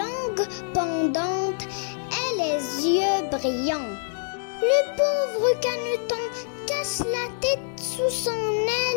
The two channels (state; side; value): silent; right; digital silence